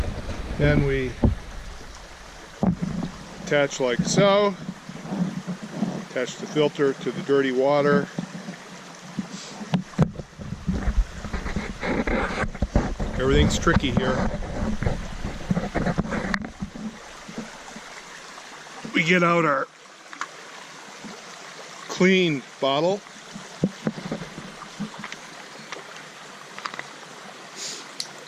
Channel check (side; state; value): both; identical; correlation 1.00